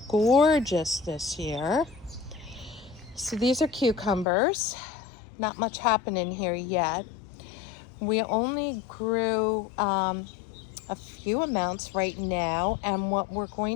gorgeous this year. So these are cucumbers. Not much happening here yet. We only grew a few amounts right now, and what we're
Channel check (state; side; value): drops out; right; at 4.2 s